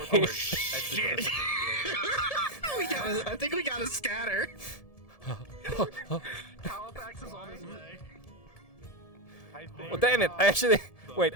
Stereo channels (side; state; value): right; late; 1.7 ms